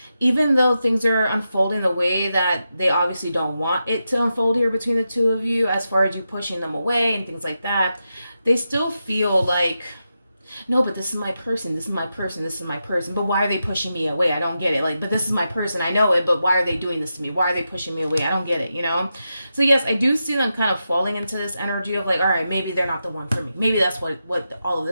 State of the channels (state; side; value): inverted; both; correlation -0.88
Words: even though things are unfolding the way that they obviously don't want it to unfold here between the two of you, as far as you pushing them away and things like that, they still feel like, no, but this is my person, this is my person, this is my person. But why are they pushing me away? I don't get it. Like, but this is my person, I know it, but why are they doing this to me? Why are they pushing me away? I don't get it, you know? So yes, I do see them kind of falling into this energy of like, all right, maybe they're not the one for me. Maybe that's what all of